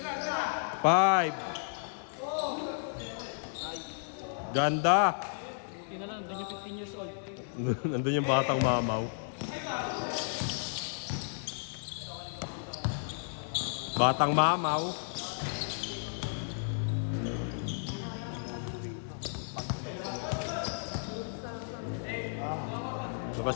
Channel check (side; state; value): right; silent; digital silence